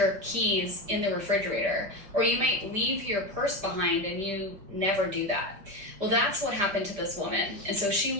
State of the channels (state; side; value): late; left; 5.1 ms